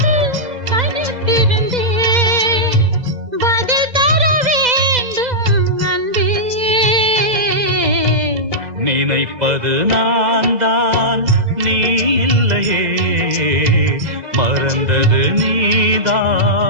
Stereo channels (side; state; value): left; late; 2.0 ms